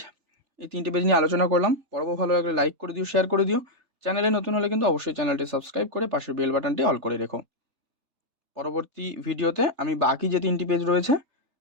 এই 3টে পেজ নিয়ে আলোচনা করলাম। পর্ব ভালো লাগলে লাইক করে দিও, শেয়ার করে দিও। চ্যানেলে নতুন হলে কিন্তু অবশ্যই চ্যানেলটি সাবস্ক্রাইব করে পাশের বেল বাটনটি অল করে রেখো। পরবর্তী ভিডিওতে আমি বাকি যে 3টি পেজ রয়েছে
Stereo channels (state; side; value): late; left; 3.3 ms